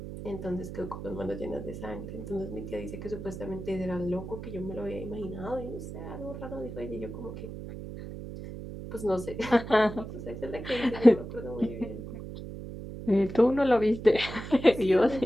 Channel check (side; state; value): right; noise; hum, 9 dB below the sound